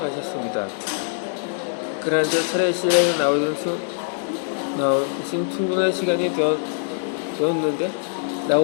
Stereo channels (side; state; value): right; silent; 63 dB below the other